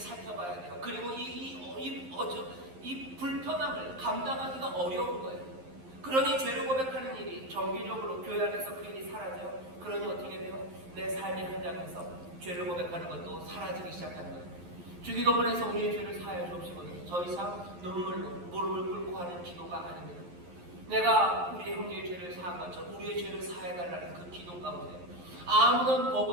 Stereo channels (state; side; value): late; left; 11 ms